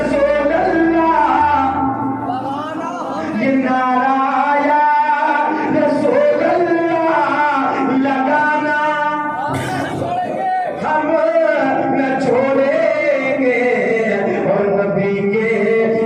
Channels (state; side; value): identical; both; correlation 1.00